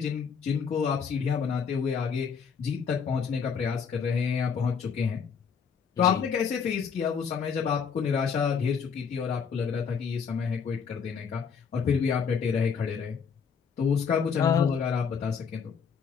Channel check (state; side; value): quieter; right; 6.4 dB